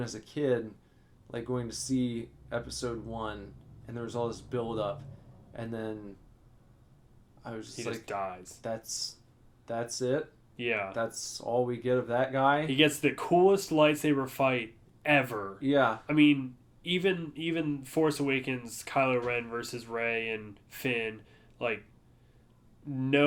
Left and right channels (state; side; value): identical; both; correlation 1.00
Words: as a kid, like going to see episode 1, and there was all this build up, and then I was just he like, just dies. That's it? Yeah. That's all we get of that guy? He gets the coolest lightsaber fight ever. Yeah. I mean, even Force Awakens, Kylo Ren versus Rey and Finn, like,